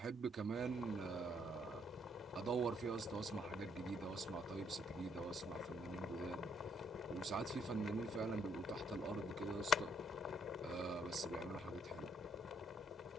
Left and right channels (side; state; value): both; normal; correlation 0.70